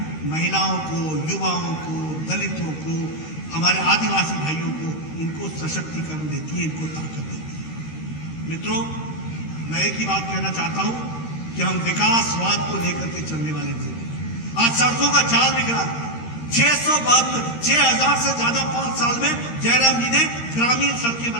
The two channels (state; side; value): late; right; 13 ms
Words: महिलाओं को, युवाओं को, दलितों को, हमारे आदिवासी भाइयों को, इनको सशक्तिकरण देती है, इनको ताकत देती है। मित्रों, मैं एक ही बात कहना चाहता हूं कि हम विकासवाद को लेकर के चलने वाले थे। आज सड़कों का जाल दिख रहा है। 6,000 से ज्यादा 5 साल में जयराम जी ने ग्रामीण सड़कें